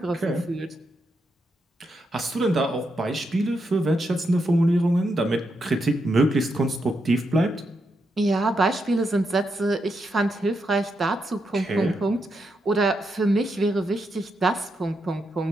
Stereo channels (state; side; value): normal; both; correlation 0.83